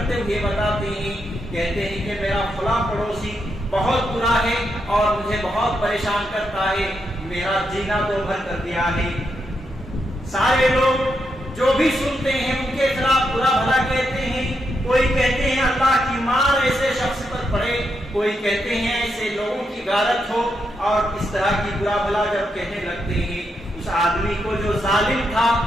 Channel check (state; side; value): normal; both; correlation 0.82